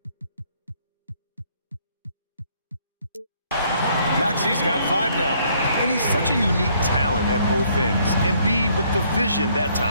Maxey's got 5 now. And he's such a unique talent at both ends. Embiid with the vision that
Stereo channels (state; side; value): inverted; both; correlation -0.66